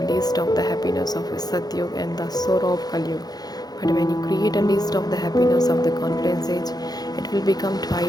list of the happiness of Satyug and the sorrow of Kalyug. But when you create a list of the happiness of the confluence age, it will become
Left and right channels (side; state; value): right; late; 0.19 ms